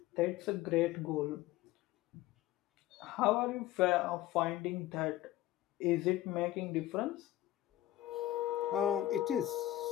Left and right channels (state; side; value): quieter; right; 15.0 dB